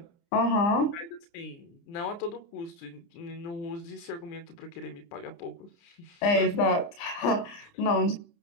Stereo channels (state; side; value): late; right; 29 ms